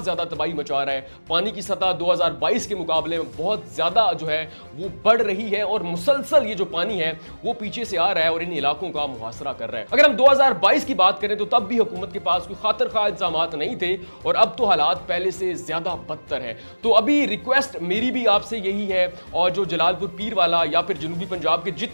زیادہ تباہی مچا رہا ہے. پانی کی سطح 2022 کے مقابلے میں بہت زیادہ جو ہے وہ بڑھ رہی ہے اور مسلسل یہ جو پانی ہے وہ پیچھے سے آ رہا ہے اور ان علاقوں کا محاصرہ کر رہا ہے. اگر ہم 2022 کی بات کریں تو تب بھی حکومت کے پاس کوئی خاطر خواہ انتظامات نہیں تھے اور اب تو حالات پہلے سے زیادہ بدتر ہیں. تو ابھی ریکویسٹ میری بھی آپ سے یہی ہے, اور جو جلال پور پیر والا یا پھر جنوبی پنجاب کے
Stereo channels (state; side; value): inverted; both; correlation -1.00